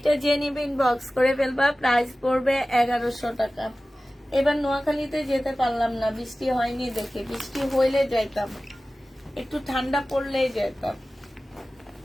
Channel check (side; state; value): both; normal; correlation 0.96